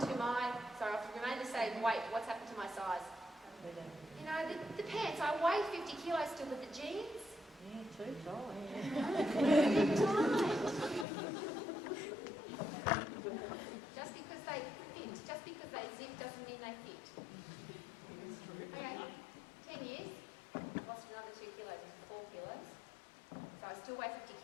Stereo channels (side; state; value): right; drops out; at 11.1 s